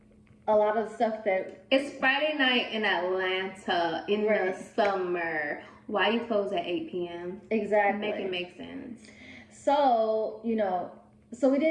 a lot of the stuff that... It's Friday night in Atlanta in the summer. Why you close at 8 p.m.? Exactly. Make it make sense. So, so we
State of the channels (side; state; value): both; identical; correlation 1.00